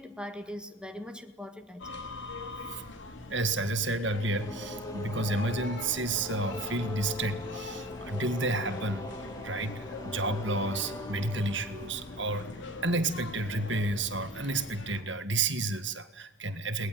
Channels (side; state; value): both; normal; correlation 0.40